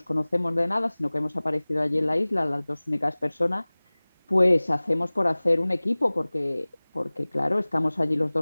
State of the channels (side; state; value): both; inverted; correlation -1.00